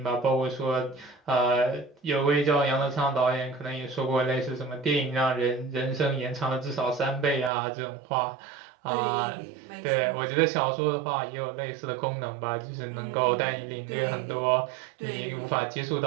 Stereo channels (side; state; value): left; drops out; at 7.5 s